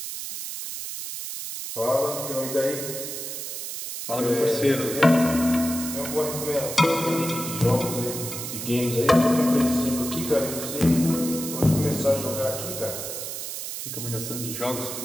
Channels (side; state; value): right; noise; hiss, 6 dB below the sound